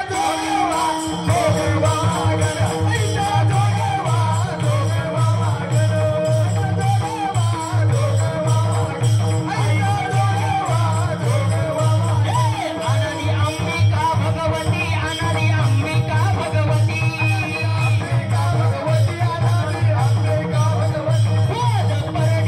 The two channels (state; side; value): identical; both; correlation 1.00